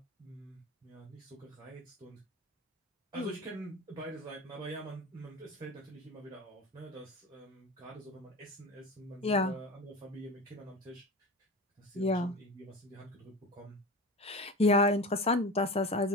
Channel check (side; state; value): both; normal; correlation 0.30